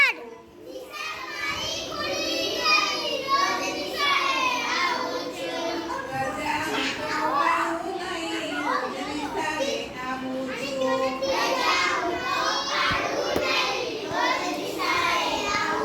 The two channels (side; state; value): both; identical; correlation 1.00